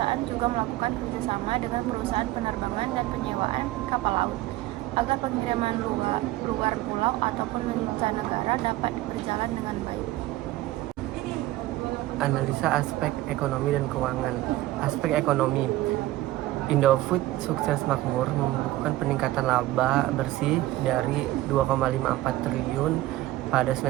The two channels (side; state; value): left; quieter; 16.6 dB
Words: juga melakukan kerjasama dengan perusahaan penerbangan dan penyewaan kapal laut agar pengiriman luar pulau ataupun mancanegara dapat berjalan dengan baik. Analisa aspek ekonomi dan keuangan. Aspek ekonomi. Indofood Sukses Makmur membukukan peningkatan laba bersih dari 2,54 triliun pada